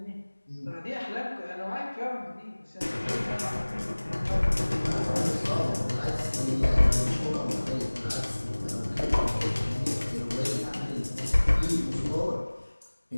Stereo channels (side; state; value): both; inverted; correlation -1.00